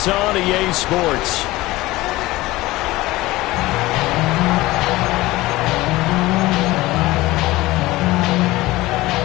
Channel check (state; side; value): quieter; right; 18.8 dB